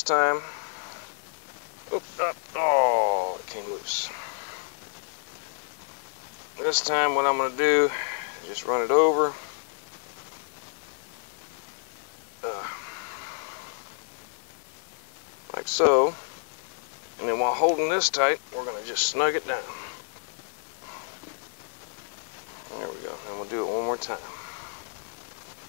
time, oh, it came loose. This time what I'm going to do is just run it over. Like so. And then while holding this tight, we're going to just snug it down. There we go. And we'll do it one more time.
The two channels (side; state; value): right; silent; digital silence